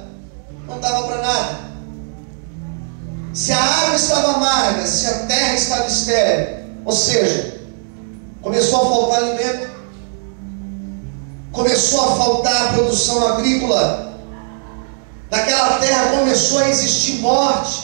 não dava para nada. Se a água estava amarga, se a terra estava estéril, ou seja, começou a faltar alimento, começou a faltar produção agrícola. Naquela terra começou a existir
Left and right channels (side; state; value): left; silent; digital silence